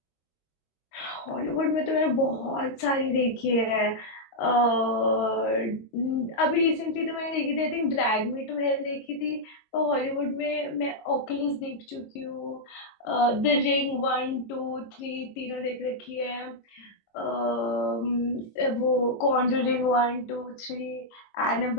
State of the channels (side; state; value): right; late; 22 ms